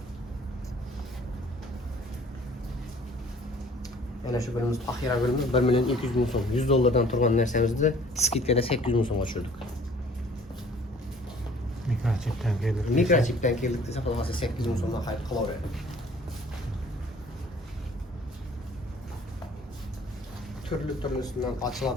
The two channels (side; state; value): both; normal; correlation 0.54